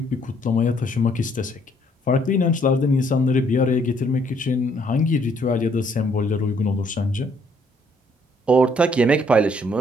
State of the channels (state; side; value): normal; both; correlation 0.66